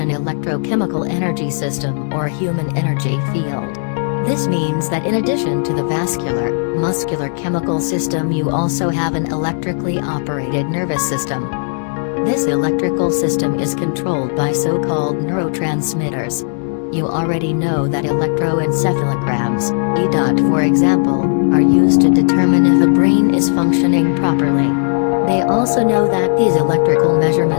an electrochemical energy system or human energy field. This means that in addition to the vascular, muscular chemical system, you also have an electrically operated nervous system. This electrical system is controlled by so-called neurotransmitters. You already know that electroencephalograms, EDOT for example, are used to determine if a brain is functioning properly. They also know that these electrical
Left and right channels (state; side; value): silent; right; digital silence